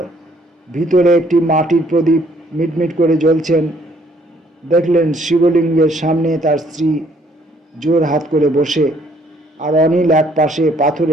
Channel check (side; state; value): both; normal; correlation 0.64